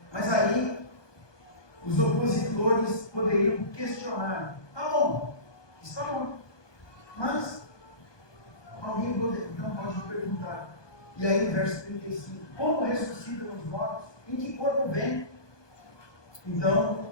Mas aí os opositores poderiam questionar: tá bom, está bom, mas alguém então pode perguntar. E aí, no verso 35, como ressuscitam os mortos? Em que corpo vem?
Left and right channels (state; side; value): late; right; 1.2 ms